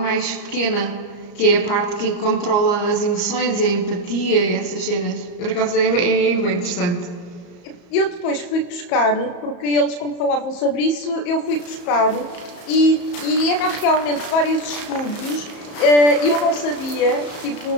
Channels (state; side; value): late; right; 34 ms